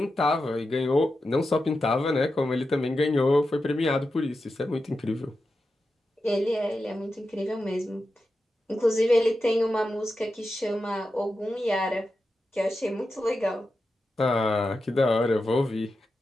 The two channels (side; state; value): both; normal; correlation 0.90